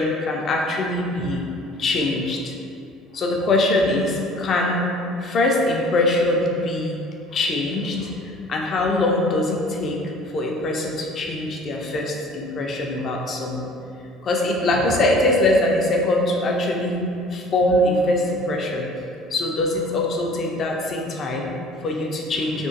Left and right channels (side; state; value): both; normal; correlation 0.49